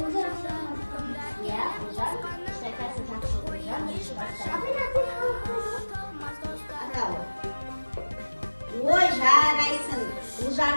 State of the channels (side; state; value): both; inverted; correlation -1.00